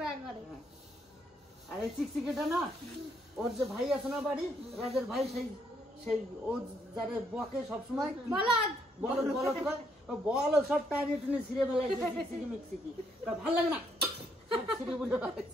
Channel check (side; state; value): both; normal; correlation 0.72